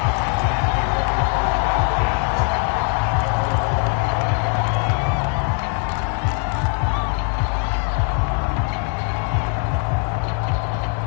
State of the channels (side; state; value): right; quieter; 35.1 dB